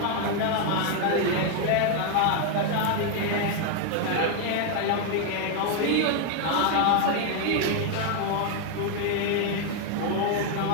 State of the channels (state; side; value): different; both; correlation 0.01